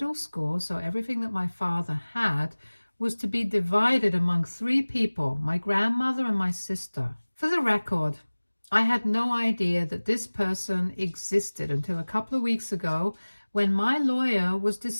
school, so everything that my father had was to be divided among three people, my grandmother and my sister. For the record, I had no idea that this person existed until a couple of weeks ago when my lawyer was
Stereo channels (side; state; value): both; inverted; correlation -1.00